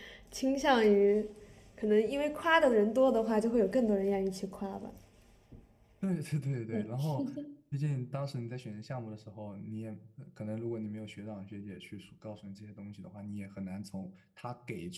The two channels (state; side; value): identical; both; correlation 1.00